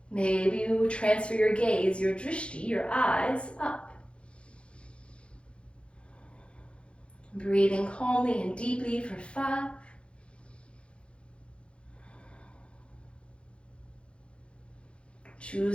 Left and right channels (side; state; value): right; late; 0.058 ms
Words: Maybe you transfer your gaze, your drishti, your eyes up. Breathing calmly and deeply for 5.